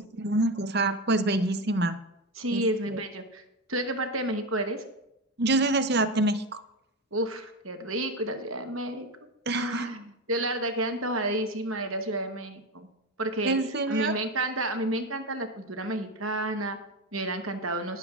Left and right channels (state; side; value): normal; both; correlation 0.17